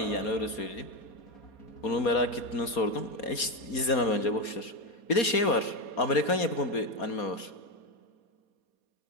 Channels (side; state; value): right; late; 4.2 ms